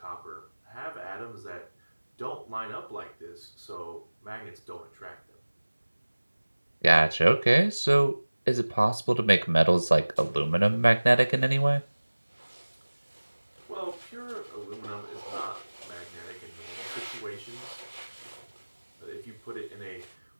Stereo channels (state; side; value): inverted; both; correlation -1.00